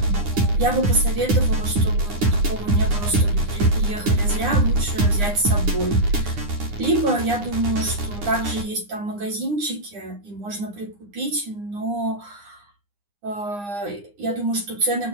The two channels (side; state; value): left; late; 9.8 ms